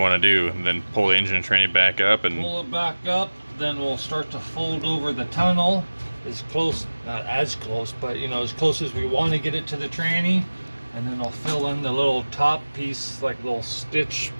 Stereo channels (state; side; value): inverted; both; correlation -1.00